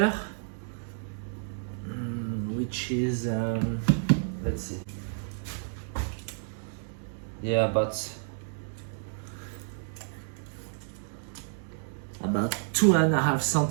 which is, let's see. Yeah, about 2.5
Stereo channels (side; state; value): left; silent; digital silence